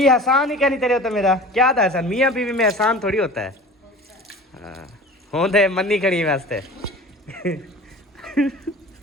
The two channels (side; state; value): both; normal; correlation 0.39